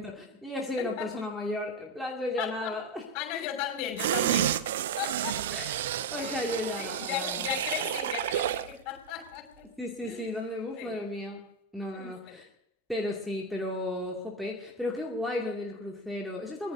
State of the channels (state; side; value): normal; both; correlation 0.10